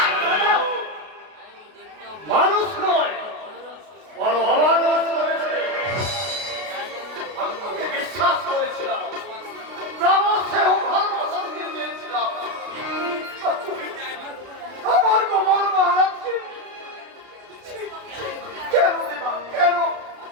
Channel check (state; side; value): late; left; 33 ms